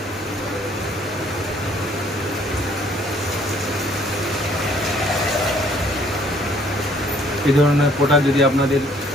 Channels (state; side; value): normal; both; correlation 0.61